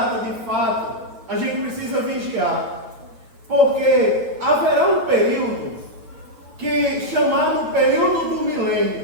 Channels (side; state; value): left; late; 8.9 ms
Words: de fato. A gente precisa vigiar. Porque haverá um período chamado período do